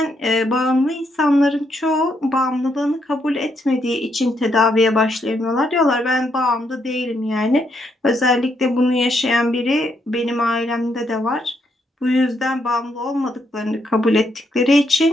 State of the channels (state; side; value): normal; both; correlation 0.76